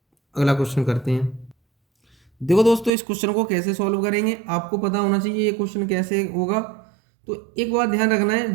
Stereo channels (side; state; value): left; drops out; at 2.9 s